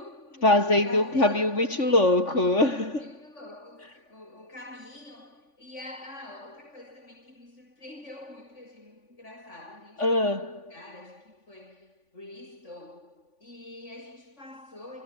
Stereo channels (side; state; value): right; late; 3.5 ms